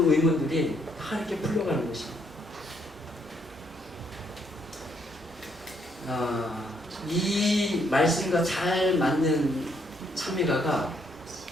의문들이 다 이렇게 풀려가는 것입니다. 이 말씀과 잘 맞는 찬미가가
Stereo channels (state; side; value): normal; both; correlation 0.72